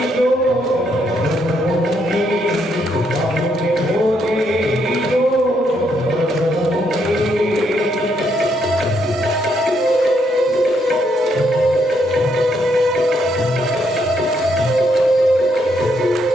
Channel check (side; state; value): both; normal; correlation 0.74